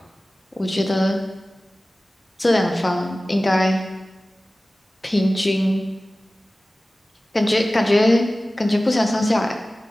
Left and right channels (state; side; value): normal; both; correlation 0.97